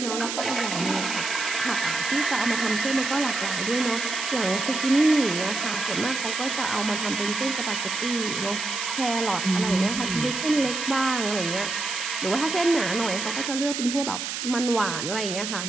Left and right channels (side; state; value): right; noise; hiss, 4 dB below the sound